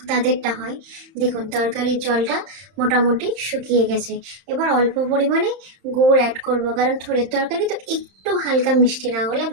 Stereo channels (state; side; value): late; left; 31 ms